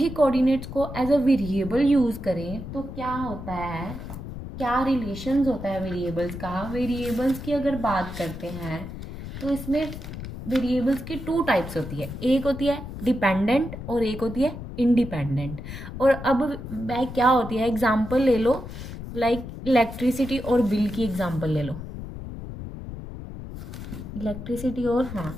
coordinates को as a variable use करें तो क्या होता है, क्या रिलेशंस होता है वेरिएबल्स का. वेरिएबल्स की अगर बात करते हैं तो इसमें वेरिएबल्स की टू टाइप्स होती है. एक होती है डिपेंडेंट और एक होती है इंडिपेंडेंट. और अब वह क्या होती है, एग्जाम्पल ले लो, लाइक इलेक्ट्रिसिटी और बिल की एग्जाम्पल ले लो. इलेक्ट्रिसिटी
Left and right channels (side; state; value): left; noise; rumble, 10 dB below the sound